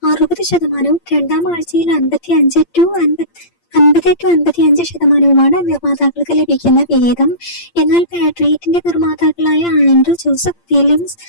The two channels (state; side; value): late; right; 8.7 ms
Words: 60%, രണ്ടാം ആഴ്ചയിൽ 50-55% നിർമ്മാതാക്കൾക്ക് ലഭിക്കുന്ന വിഹിതം. എന്നാൽ പാട്രിയറ്റിന്റെ നിർമ്മാതാക്കളായ ആൻഡ്രൂ ജോസഫ് ഫിലിംസ്